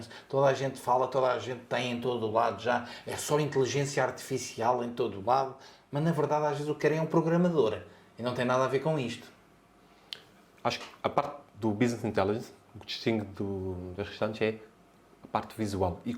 Toda a gente fala, toda a gente tem em todo o lado já. É só inteligência artificial em todo o lado. Mas, na verdade, às vezes o que querem é um programador. E não tem nada a ver com isto. Acho que a parte do Business Intelligence, o que distingue das restantes é a parte visual e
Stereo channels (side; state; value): both; identical; correlation 1.00